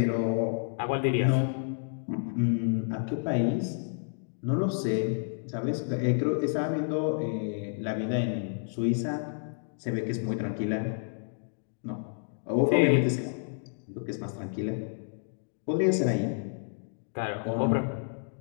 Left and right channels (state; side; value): silent; right; digital silence